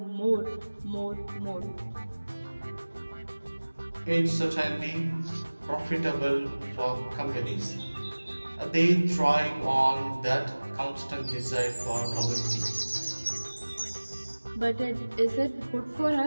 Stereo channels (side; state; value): both; inverted; correlation -1.00